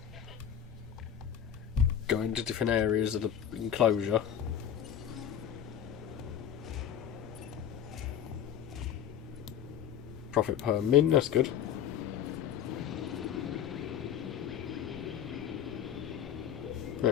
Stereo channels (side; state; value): right; quieter; 9.3 dB